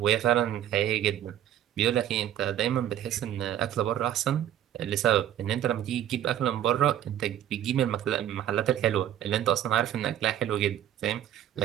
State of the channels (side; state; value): left; quieter; 11.2 dB